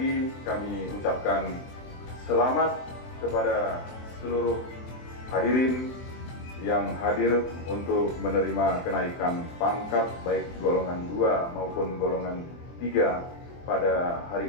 kami ucapkan selamat kepada seluruh hadirin yang hadir untuk menerima kenaikan pangkat baik golongan 2 maupun golongan 3 pada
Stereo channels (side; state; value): right; late; 24 ms